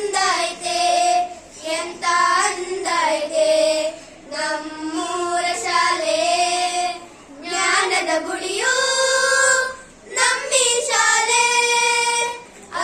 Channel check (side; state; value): both; identical; correlation 1.00